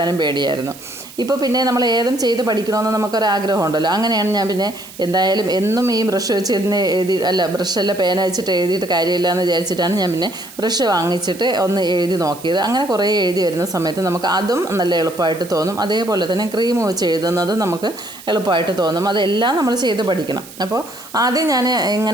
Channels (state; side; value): noise; right; hiss, 18 dB below the sound